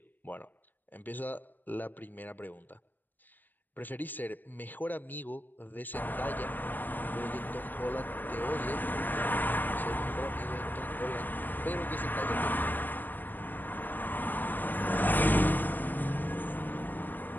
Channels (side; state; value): right; late; 0.086 ms